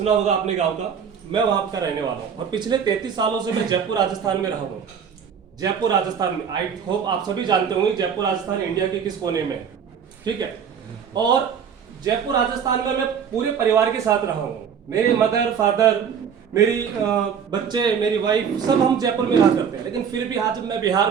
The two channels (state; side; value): quieter; left; 7.4 dB